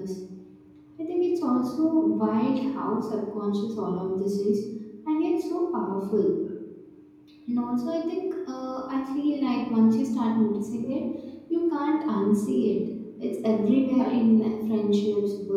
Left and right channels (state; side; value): identical; both; correlation 1.00